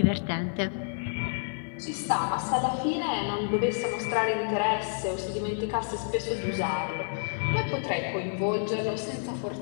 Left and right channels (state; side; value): silent; right; digital silence